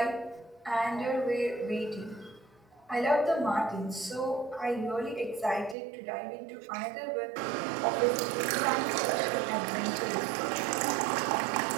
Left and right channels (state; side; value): drops out; left; at 5.8 s